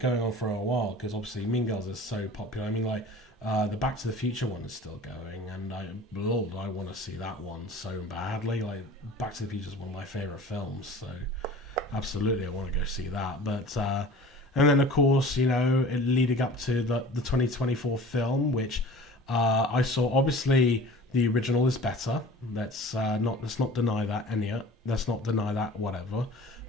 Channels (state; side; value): normal; both; correlation 0.42